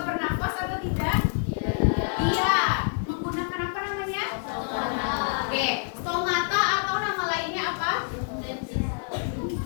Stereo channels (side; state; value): right; silent; 60 dB below the other